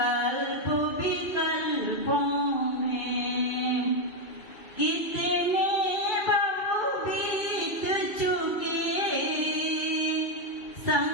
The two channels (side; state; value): right; late; 2.7 ms